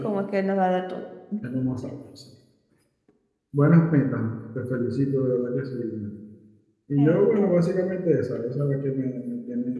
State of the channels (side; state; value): both; identical; correlation 1.00